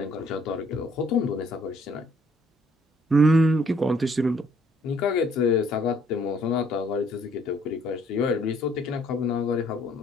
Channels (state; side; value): normal; both; correlation 0.64